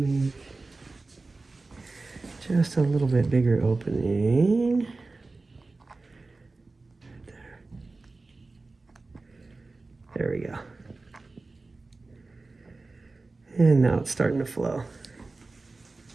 just a little bit bigger opening. There we go. And now it's starting to flow.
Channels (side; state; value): left; quieter; 3.5 dB